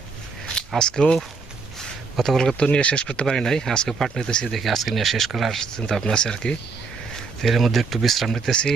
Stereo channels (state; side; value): quieter; left; 4.6 dB